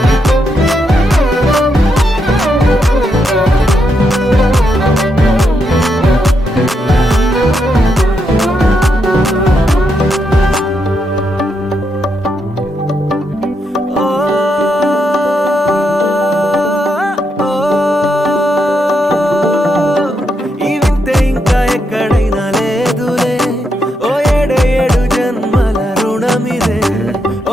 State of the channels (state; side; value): normal; both; correlation 0.81